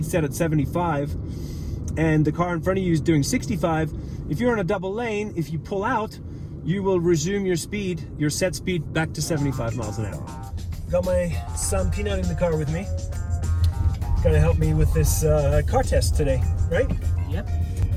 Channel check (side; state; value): both; identical; correlation 1.00